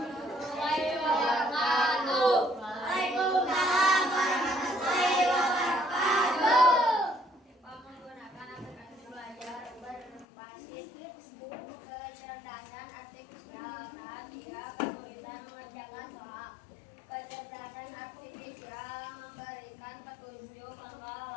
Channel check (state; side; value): drops out; right; at 10.2 s